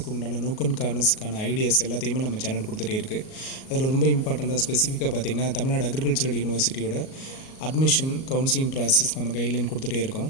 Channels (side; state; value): right; late; 38 ms